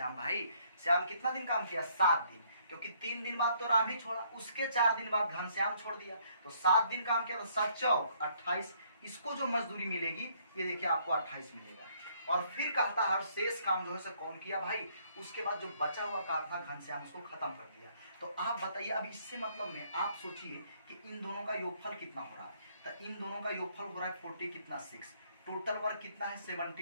भाई। श्याम कितना दिन काम किया, 7 दिन, क्योंकि 3 दिन बाद तो राम ही छोड़ा। उसके 4 दिन बाद घनश्याम छोड़ दिया, तो 7 दिन काम किया, तो 7 चौक 28। इसको जो मजदूरी मिलेगी ये देखिए आपको 28 मिलेगा। और फिर कहता है शेष काम जो है कौन किया भाई, उसके बाद जो बचा हुआ काम था घनश्याम उसको खत्म कर दिया। तो आप बताइए, अब इससे मतलब में आप सोचिए कि इन दोनों का योगफल कितना हो रहा है, तो इन दोनों का योगफल हो रहा है 40 कितना 6। टोटल वर्क कितना है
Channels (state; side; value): inverted; both; correlation -0.66